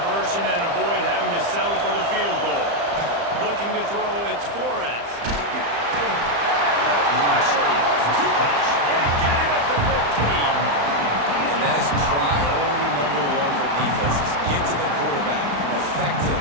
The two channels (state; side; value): late; left; 35 ms